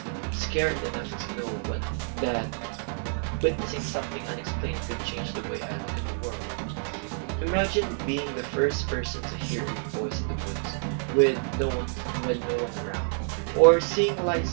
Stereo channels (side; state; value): left; silent; 58 dB below the other